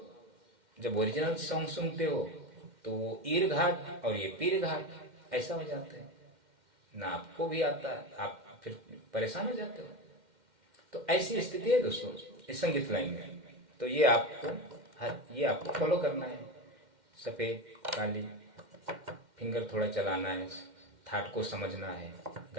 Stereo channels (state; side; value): late; left; 2.1 ms